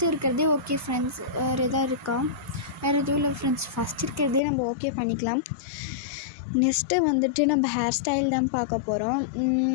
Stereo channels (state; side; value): drops out; right; at 4.4 s